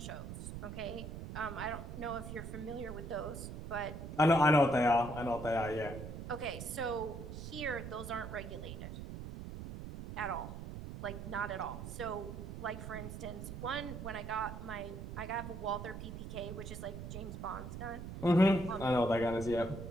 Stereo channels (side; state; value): right; noise; rumble, 8 dB below the sound